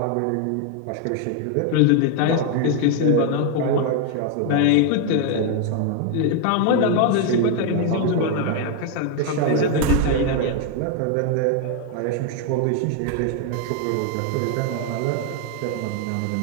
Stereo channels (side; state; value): both; different; correlation 0.00